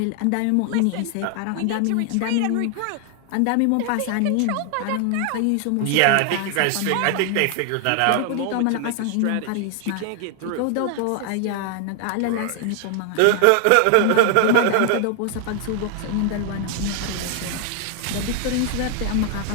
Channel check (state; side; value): different; both; correlation 0.00